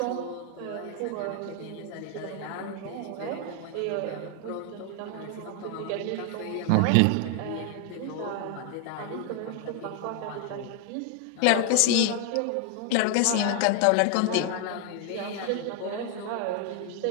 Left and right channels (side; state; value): both; different; correlation 0.00